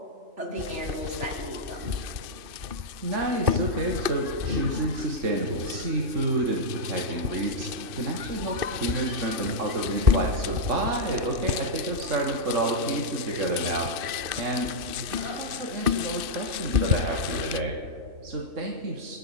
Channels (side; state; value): left; late; 2.6 ms